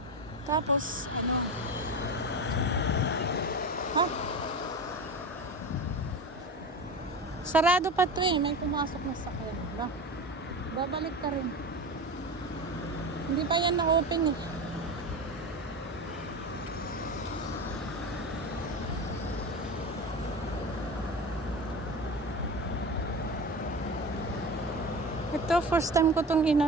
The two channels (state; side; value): normal; both; correlation 0.28